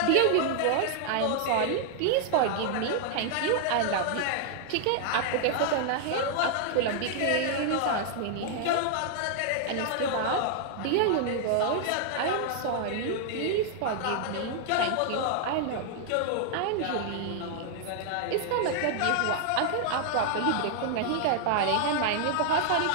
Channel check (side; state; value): both; different; correlation 0.00